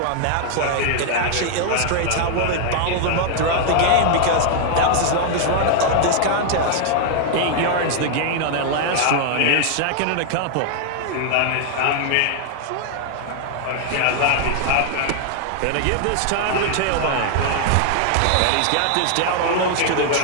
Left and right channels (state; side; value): different; both; correlation 0.00